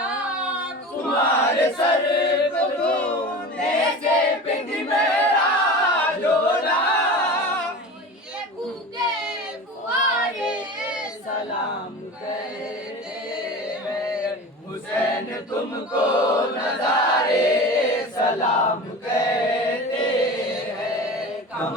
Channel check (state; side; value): normal; both; correlation 0.33